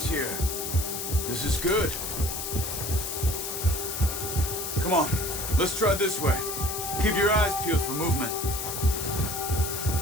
here. This is good. Come on, let's try this way. Keep your eyes peeled for movement.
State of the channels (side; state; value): left; noise; hiss, 4 dB below the sound